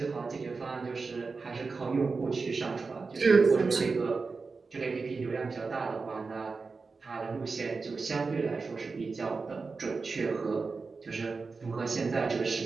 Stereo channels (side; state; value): left; quieter; 4.4 dB